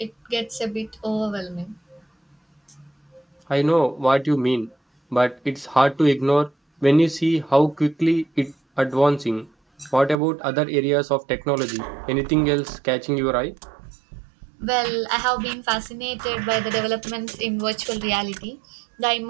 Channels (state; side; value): drops out; left; at 10.2 s